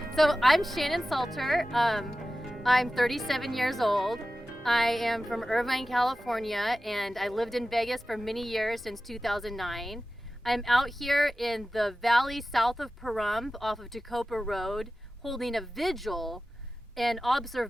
So I'm Shannon Salter. I'm 37 years old. I am from Irvine, California, and I lived in Vegas for many years since 2009. I'm out here in the valley south of Pahrump off of Tacopa Road holding a vigil and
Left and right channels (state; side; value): normal; both; correlation 0.95